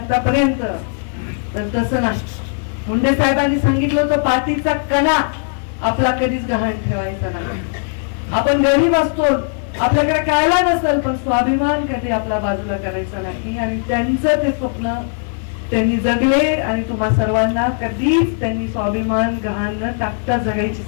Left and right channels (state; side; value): silent; right; 67 dB below the other